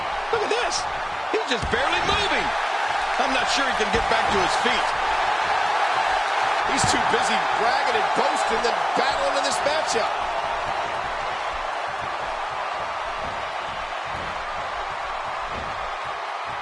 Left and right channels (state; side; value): identical; both; correlation 1.00